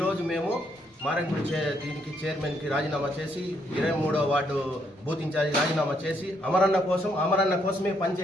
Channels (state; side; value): normal; both; correlation 0.74